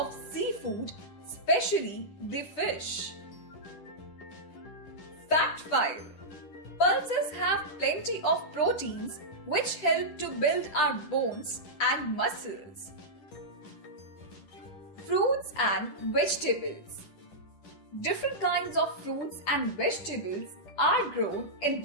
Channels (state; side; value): late; right; 10 ms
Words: seafood, especially the fish. Fact 5. Pulses have plenty of proteins which help to build our bones and muscles. Fruits and vegetables. Different kinds of fruits and vegetables are grown in